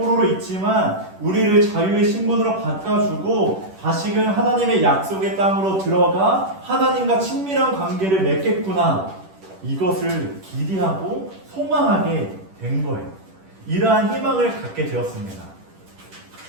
있지만 우리를 자유의 신분으로 바꿔주고 다시금 하나님의 약속의 땅으로 들어가 하나님과 친밀한 관계를 맺겠구나. 이것을 기대하고 소망하게 된 거예요. 이러한 희망을 갖게 되었습니다.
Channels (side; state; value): left; late; 10 ms